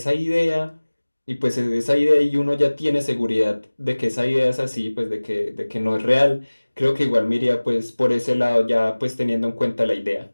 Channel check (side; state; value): both; inverted; correlation -1.00